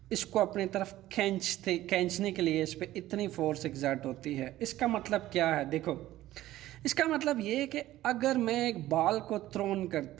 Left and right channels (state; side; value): quieter; left; 15.0 dB